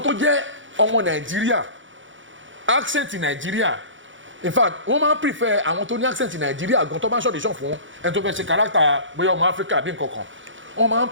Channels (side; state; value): left; late; 0.56 ms